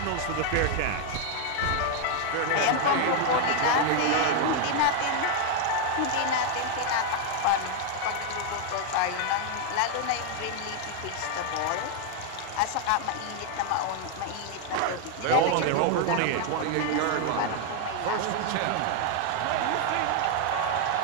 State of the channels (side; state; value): both; different; correlation 0.00